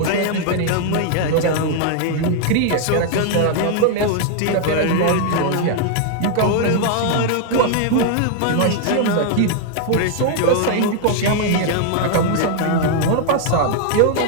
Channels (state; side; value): different; both; correlation 0.00